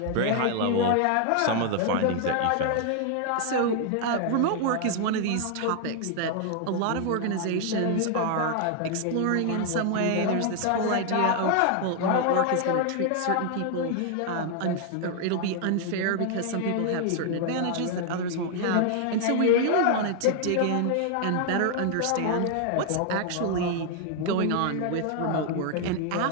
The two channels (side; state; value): both; different; correlation 0.00